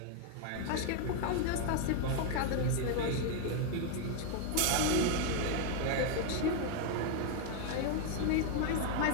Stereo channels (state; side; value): different; both; correlation 0.00